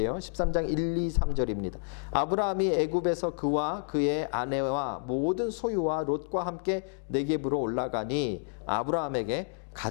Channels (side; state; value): right; silent; digital silence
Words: 13장 1, 2, 3절입니다. 아브라함이 애굽에서 그와 그의 아내와 모든 소유와 롯과 함께 네겝으로 올라가니 아브라함에게